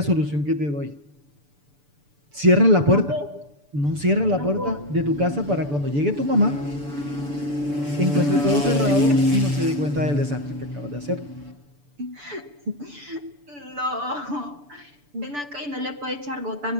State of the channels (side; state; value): left; late; 6.9 ms